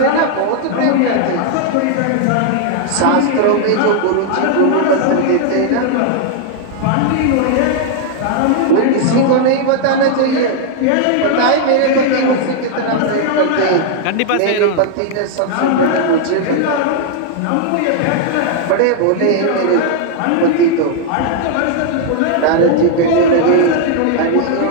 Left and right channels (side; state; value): both; different; correlation 0.00